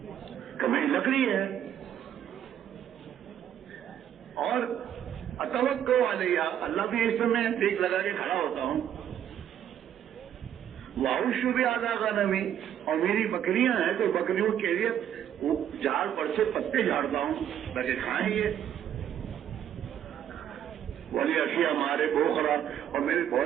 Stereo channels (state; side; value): quieter; left; 10.2 dB